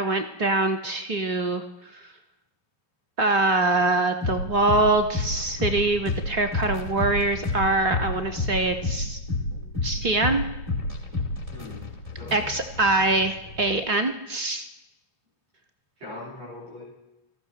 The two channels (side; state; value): left; late; 3.5 ms